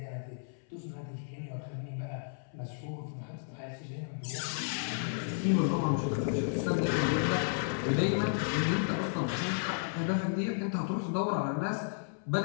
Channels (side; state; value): right; silent; 56 dB below the other